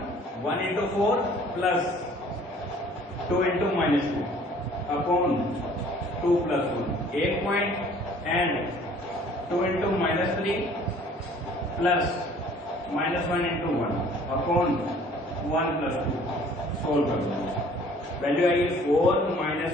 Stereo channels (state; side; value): normal; both; correlation 0.54